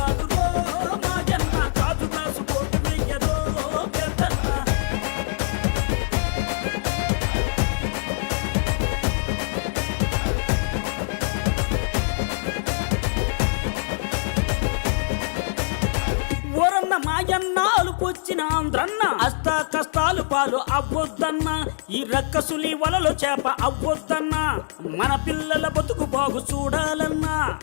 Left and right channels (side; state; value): right; silent; digital silence